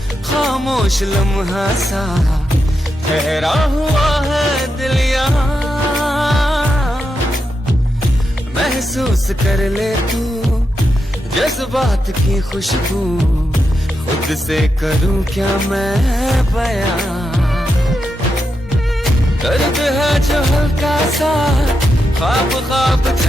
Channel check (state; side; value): normal; both; correlation 0.86